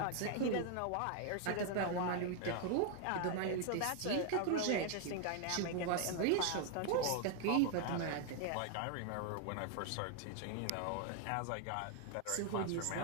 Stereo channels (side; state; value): both; different; correlation 0.00